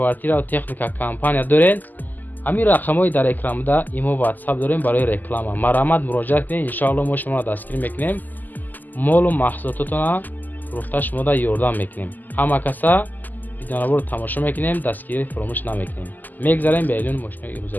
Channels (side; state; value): right; late; 0.085 ms